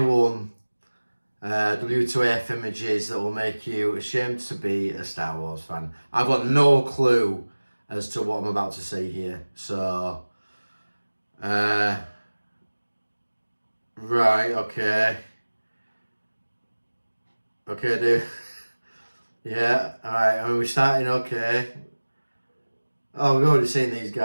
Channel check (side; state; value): both; inverted; correlation -1.00